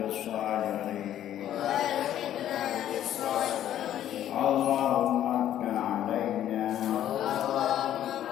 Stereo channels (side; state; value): right; quieter; 11.5 dB